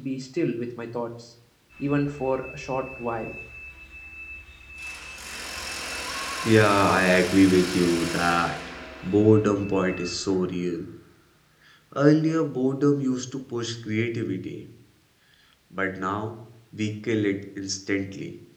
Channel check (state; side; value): identical; both; correlation 1.00